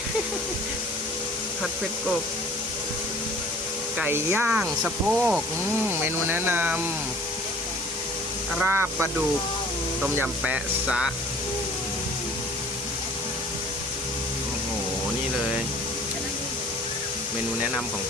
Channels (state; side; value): normal; both; correlation 0.49